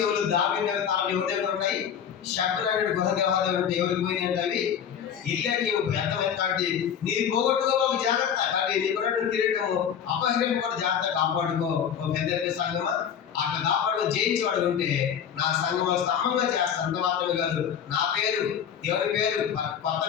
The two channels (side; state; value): right; quieter; 8.3 dB